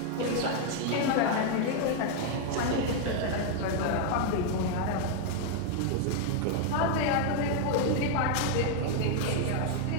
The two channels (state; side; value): different; both; correlation 0.00